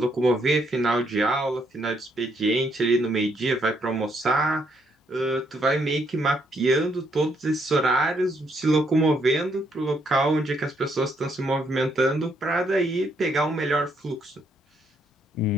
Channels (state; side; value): normal; both; correlation 0.72